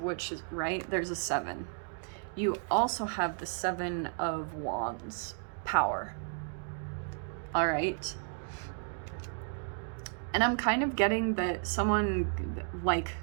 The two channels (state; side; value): silent; left; 56 dB below the other